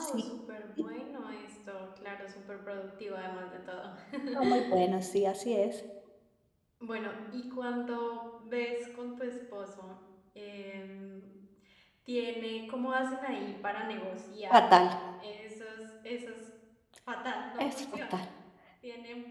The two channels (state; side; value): identical; both; correlation 1.00